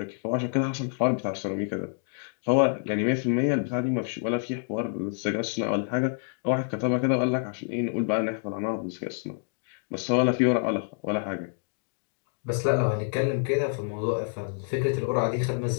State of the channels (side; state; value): right; silent; 58 dB below the other